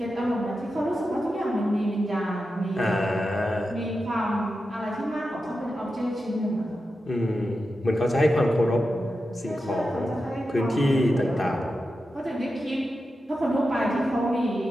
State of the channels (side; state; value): both; normal; correlation 0.90